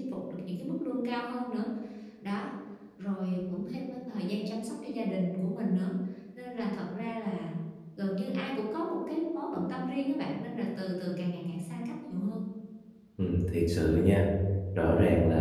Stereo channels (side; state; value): both; identical; correlation 1.00